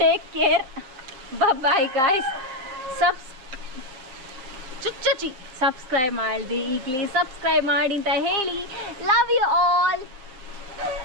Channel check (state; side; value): late; left; 7.5 ms